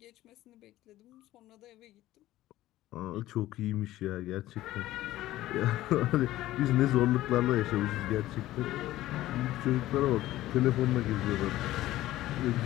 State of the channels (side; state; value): right; quieter; 15.4 dB